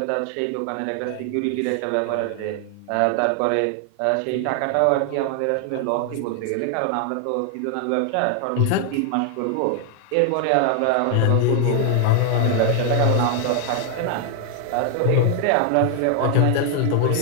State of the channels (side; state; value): both; different; correlation 0.00